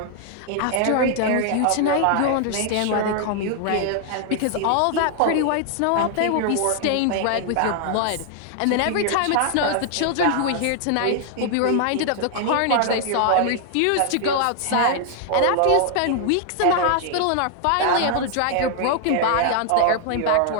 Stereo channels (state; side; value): different; both; correlation 0.00